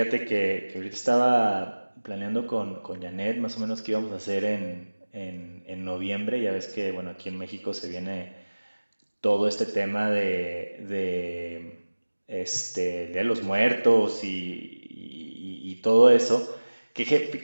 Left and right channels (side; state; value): both; inverted; correlation -1.00